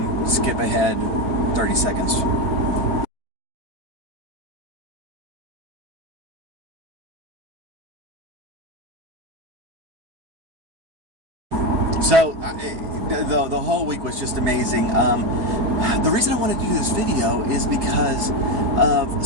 skip ahead 30 seconds. So the whole week was just amazing. The reason I wanted to do this video is because of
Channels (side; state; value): left; late; 4.7 ms